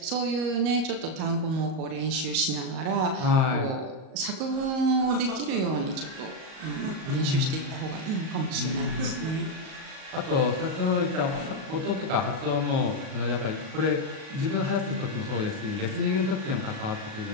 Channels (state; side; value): late; left; 38 ms